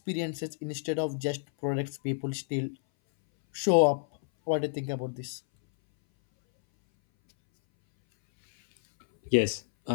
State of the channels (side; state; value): right; silent; 59 dB below the other